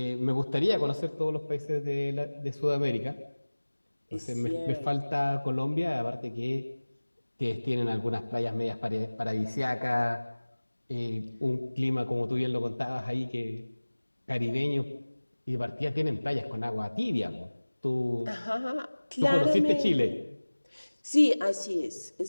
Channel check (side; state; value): both; inverted; correlation -1.00